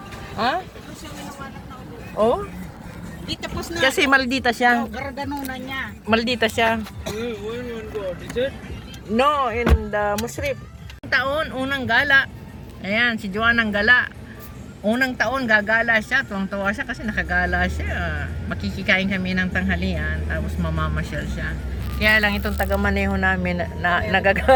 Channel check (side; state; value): both; identical; correlation 1.00